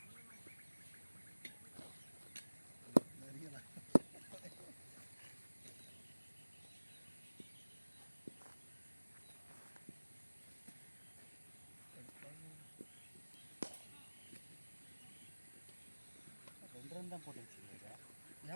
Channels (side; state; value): both; inverted; correlation -1.00